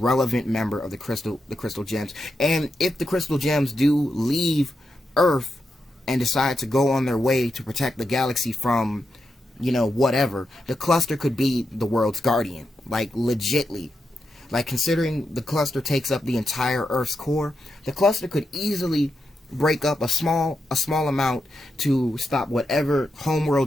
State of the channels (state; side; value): normal; both; correlation 0.86